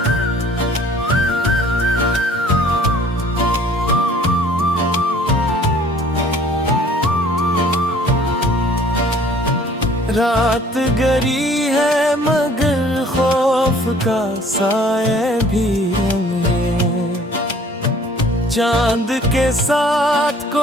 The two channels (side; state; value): both; normal; correlation 0.54